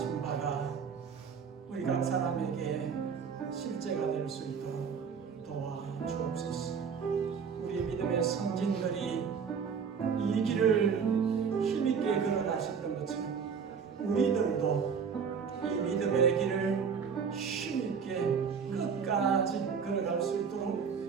바가 우리 각 사람에게 실제가 될 수 있도록 도와주옵소서. 우리 믿음의 성진들이 이 길을 힘있게 걸어가셨던 것처럼 우리들도 이 믿음의 길을 힘있게 끝까지 걸어갈 수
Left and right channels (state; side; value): quieter; left; 6.4 dB